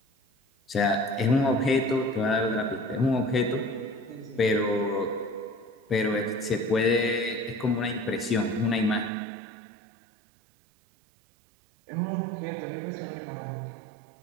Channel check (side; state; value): left; drops out; at 9.1 s